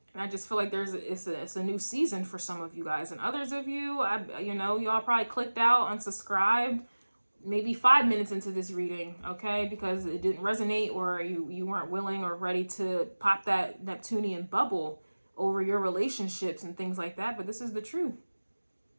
I just feel like it's a new season for some of you guys. And others of you, you know, y'all probably clicked out, unsubscribed, maybe 5 minutes into this reading, okay? Because it didn't resonate, or you weren't willing or ready to pop that Neptunian bubble over your relationships and things like that. But this is the truth.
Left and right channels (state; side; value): inverted; both; correlation -1.00